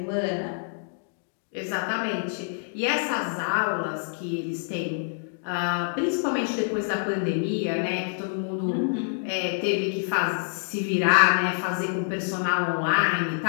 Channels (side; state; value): right; silent; digital silence